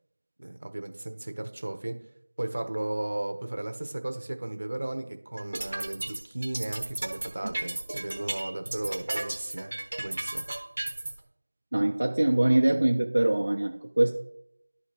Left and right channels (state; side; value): inverted; both; correlation -1.00